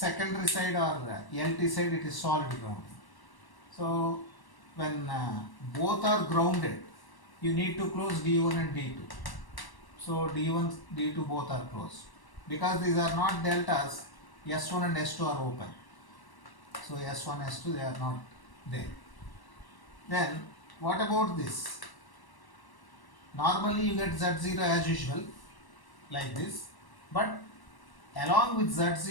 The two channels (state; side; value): late; right; 1.1 ms